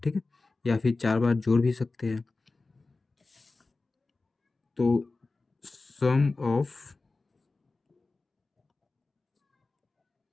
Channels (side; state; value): right; quieter; 3.6 dB